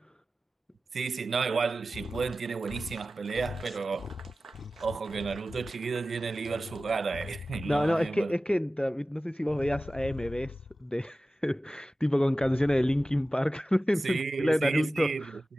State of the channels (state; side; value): normal; both; correlation 0.95